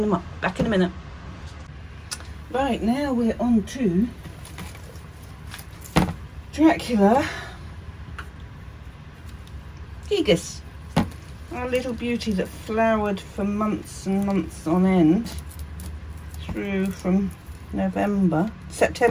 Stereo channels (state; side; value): identical; both; correlation 1.00